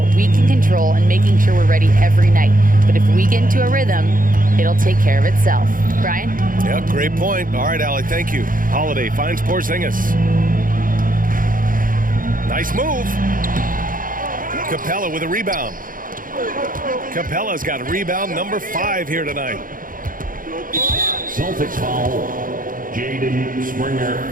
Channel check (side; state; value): left; late; 0.40 ms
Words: we can control and making sure we're ready every night. But if we get into a rhythm, it'll take care of itself." Brian? Yeah, great point. All right, Allie, thank you. Holiday finds Porzingis. Nice move. Capella with a rebound. Capella's got a rebound number 5 here tonight. Celtics foul. Jaden Springer.